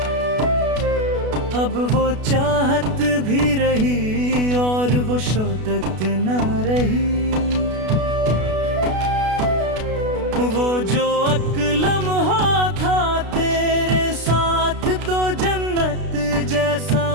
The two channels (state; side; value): late; left; 32 ms